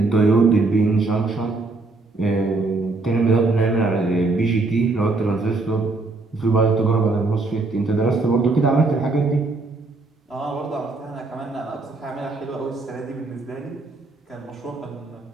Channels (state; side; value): quieter; left; 3.5 dB